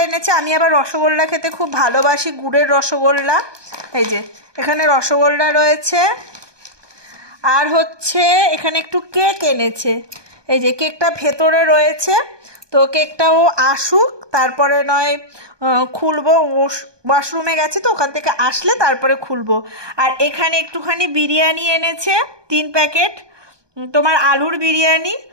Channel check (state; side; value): late; left; 1.2 ms